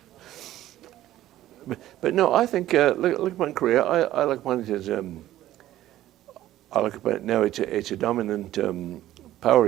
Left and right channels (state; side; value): quieter; left; 14.0 dB